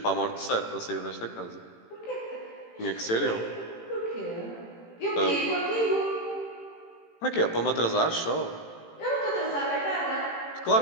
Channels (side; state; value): right; late; 18 ms